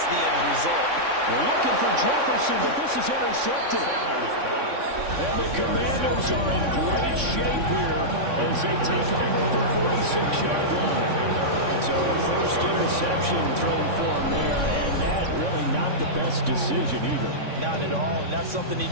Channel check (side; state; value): left; late; 3.6 ms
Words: the end result. We're looking for Jefferson, but this is intercepted. And the Commanders are in great shape here as they take over the 46-yard line. So a first interception thrown for him there, and that really not the best decision either. Not at all, and that's something he